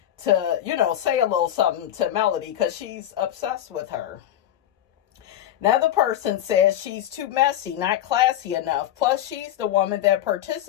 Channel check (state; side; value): quieter; right; 11.8 dB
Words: to, say a little something to Melody because she's obsessed with her. Another person says she's too messy, not classy enough. Plus, she's the woman that